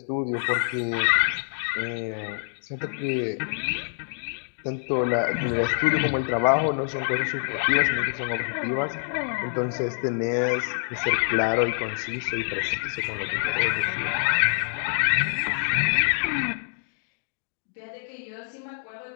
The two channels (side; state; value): right; silent; digital silence